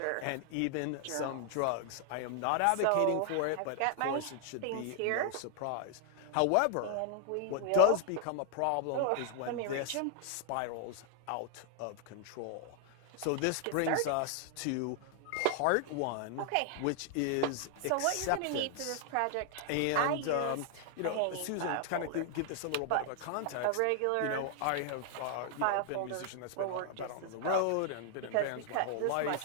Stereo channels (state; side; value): different; both; correlation 0.00